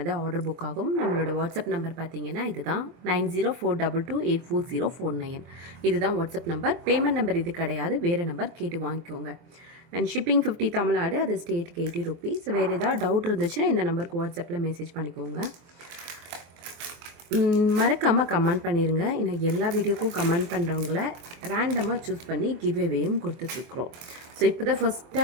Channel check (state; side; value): late; left; 24 ms